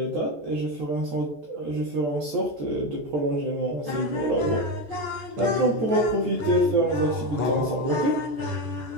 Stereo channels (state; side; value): late; left; 14 ms